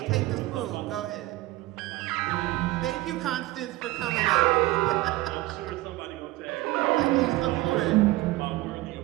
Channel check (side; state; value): left; quieter; 18.5 dB